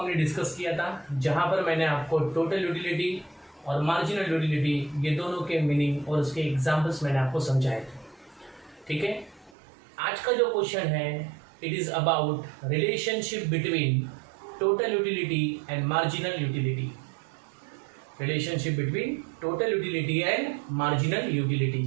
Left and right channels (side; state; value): left; drops out; at 9.5 s